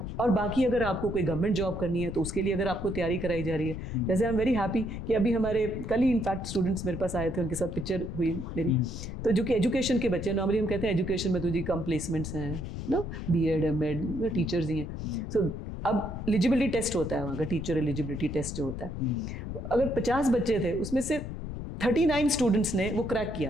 और बाकी अगर आपको कोई गवर्नमेंट जॉब करनी है तो उसके लिए अगर आपको तैयारी कराई जा रही है, जैसे आई एम वेरी हैप्पी कि अभी हमारे कल ही इनफैक्ट स्टूडेंट्स मेरे पास आए थे, उनके साथ पिक्चर हुई मेरी। तो जो कि एजुकेशन के बच्चे, नॉर्मली हम कहते हैं एजुकेशन में तो जी कम प्लेसमेंट्स हैं ना, BEd MAd टीचर्स ही हैं। सो अब एलिजिबिलिटी टेस्ट होता है वहाँ का, टीचर एलिजिबिलिटी टेस्ट जो होता है, अगर 50 बच्चे थे उसमें से 39 स्टूडेंट्स ने वो क्रैक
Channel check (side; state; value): left; noise; rumble, 7 dB below the sound